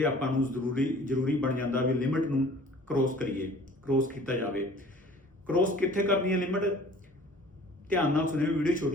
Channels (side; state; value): both; normal; correlation 0.49